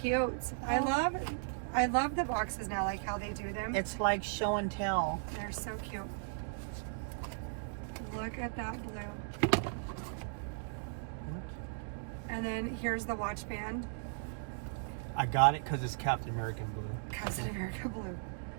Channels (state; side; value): silent; left; digital silence